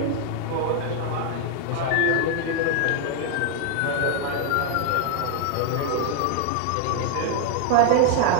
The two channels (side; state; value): both; different; correlation 0.00